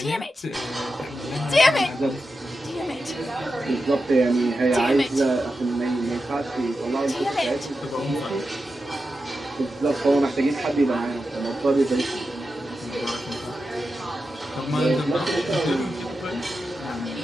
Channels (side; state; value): both; normal; correlation 0.90